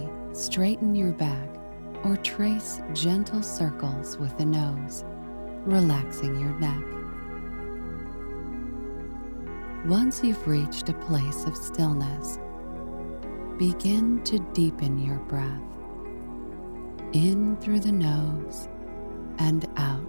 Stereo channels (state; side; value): inverted; both; correlation -1.00